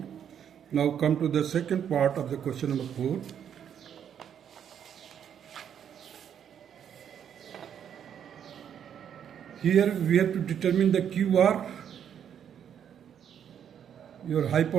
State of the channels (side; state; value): left; quieter; 8.8 dB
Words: Now come to the second part of the question number 4. Here we have to determine the QR. Your